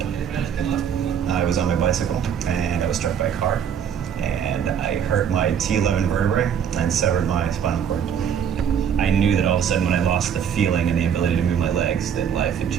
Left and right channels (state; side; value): quieter; left; 8.2 dB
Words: I was on my bicycle and I was struck by a car, and I hurt my T11 vertebrae and severed my spinal cord. I knew that all of a sudden when I lost the feeling and the ability to move my legs, that life had